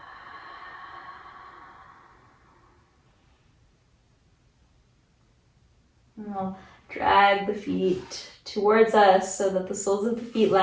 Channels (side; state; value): both; identical; correlation 1.00